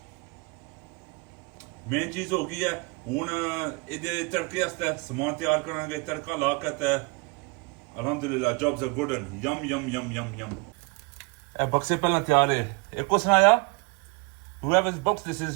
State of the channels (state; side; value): quieter; left; 28.8 dB